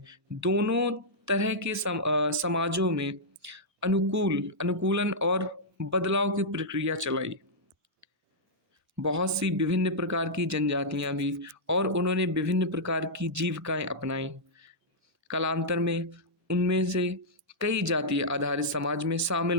दोनों तरह के समाजों में अनुकूलन और बदलाव की प्रक्रिया चलाई। बहुत सी विभिन्न प्रकार की जनजातियां भी, और उन्होंने विभिन्न प्रकार की जीविकाएं अपनाई। कालांतर में उनमें से कई जातीय आधारित समाज में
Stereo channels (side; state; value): both; normal; correlation -0.09